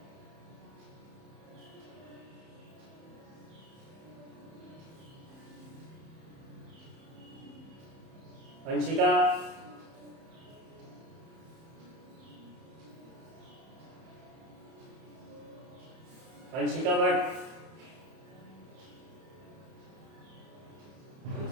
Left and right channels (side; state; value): left; late; 31 ms